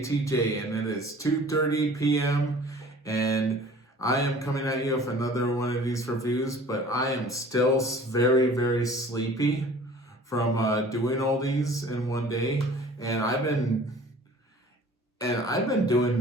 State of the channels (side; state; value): both; normal; correlation 0.47